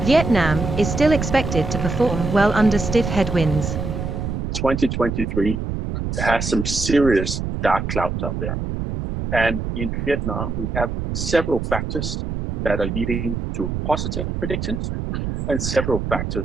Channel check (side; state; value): right; noise; rumble, 3 dB below the sound